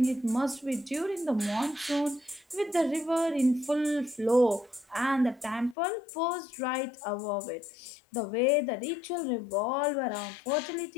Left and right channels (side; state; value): right; drops out; at 5.8 s